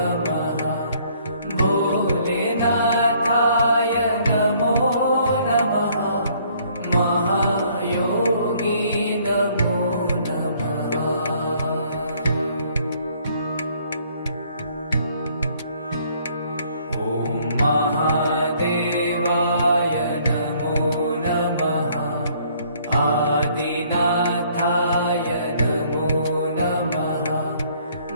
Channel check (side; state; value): both; inverted; correlation -0.62